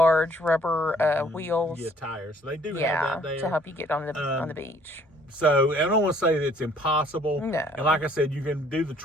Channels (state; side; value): normal; both; correlation 0.60